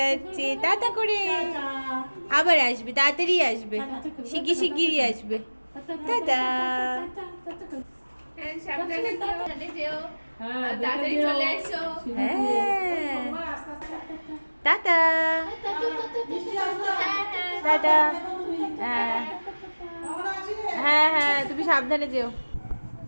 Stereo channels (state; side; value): inverted; both; correlation -1.00